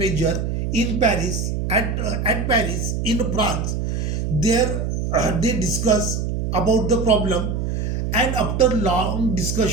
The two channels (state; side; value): noise; right; hum, 1 dB below the sound